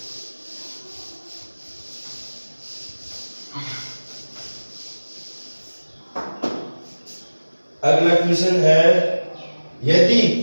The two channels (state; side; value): inverted; both; correlation -1.00